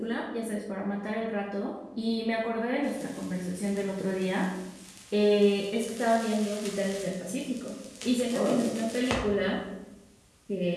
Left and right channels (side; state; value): both; identical; correlation 1.00